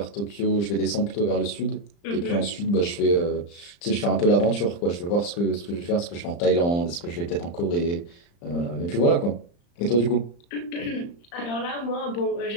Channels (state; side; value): late; right; 35 ms